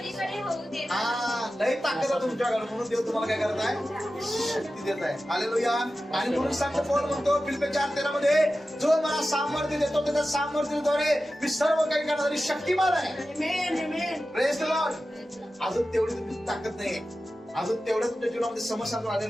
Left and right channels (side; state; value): both; normal; correlation 0.94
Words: होऊ देत नाही. हा, लय ताकद आहे तुमच्याकडे, म्हणून देव तुम्हाला काय करत आहे, शक्ती देत आहे. हालेलुया. आणि म्हणून सांगतो पौल म्हणतो फिलिप्पी 4:13 मध्ये, जो मला सामर्थ्य देतो त्याच्या सामर्थ्याद्वारे मी सर्व काही करणारी शक्तिमान आहे. Praise the Lord. अजून तेवढी तुमची ताकद नाहीये, अजून तेवढ्या तुमच्या जीवनामध्ये समस्या आलेल्या